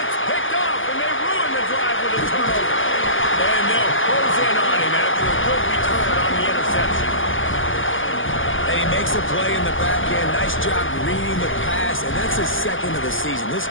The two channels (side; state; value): right; late; 0.58 ms